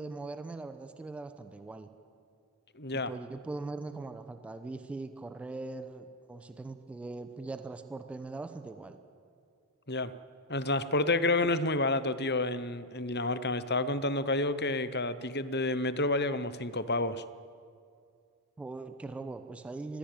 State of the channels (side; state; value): both; normal; correlation 0.00